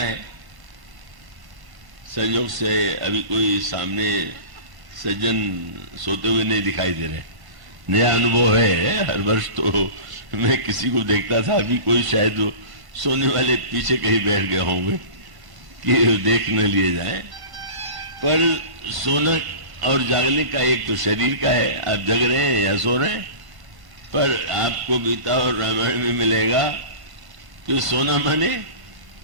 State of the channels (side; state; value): left; late; 1.1 ms